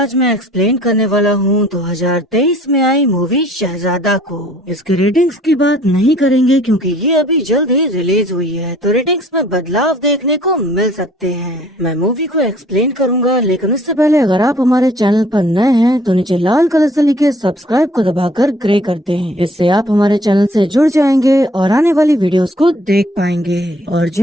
मैं एक्सप्लेन करने वाला हूँ 2023 में आई मूवी शहजादा को। इसकी रेटिंग्स की बात नहीं करेंगे क्योंकि ये अभी जल्द ही रिलीज हुई है, तो रेटिंग्स में बदलाव देखने को मिल सकते हैं। मैं मूवी को एक्सप्लेन करूंगा, लेकिन उससे पहले अगर आप हमारे चैनल पर नए हैं तो नीचे लाल कलर से लिखे सब्सक्राइब को दबाकर ग्रे कर दें। इससे आप हमारे चैनल से जुड़ जाएंगे और आने वाली वीडियोस को देख पाएंगे। और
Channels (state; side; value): normal; both; correlation 0.56